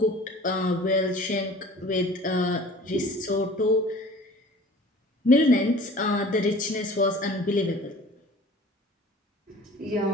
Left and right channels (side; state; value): both; normal; correlation 0.45